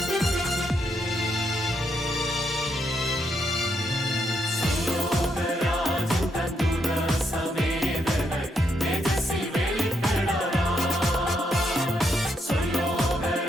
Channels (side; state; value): both; normal; correlation 0.78